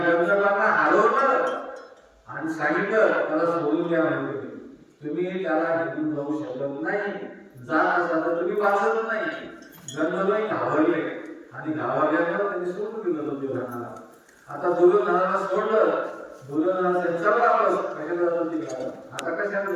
हरवलं आणि सांगितलं त्याला सोडून द्या म्हणजे तुम्ही त्याला घेऊन जाऊ शकत नाही, जात असा तर तुम्ही वाचत नाही. गंधर्व घाबरले आणि घाबरल्यावर त्यांनी सोडून दिलं दुर्योधनाला. आता दुर्योधनाला सोडलं, दुर्योधनाचा चला वापस कशाला जातो तिकडे, आता कशाला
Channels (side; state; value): both; identical; correlation 1.00